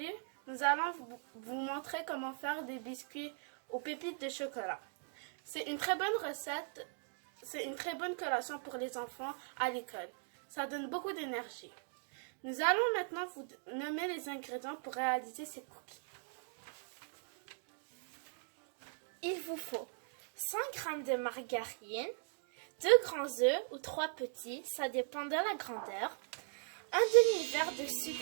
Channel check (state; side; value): silent; left; 51 dB below the other